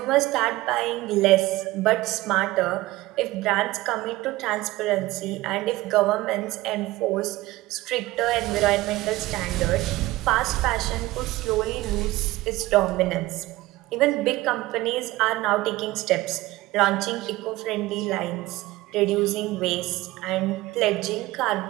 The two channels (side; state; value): left; quieter; 18.5 dB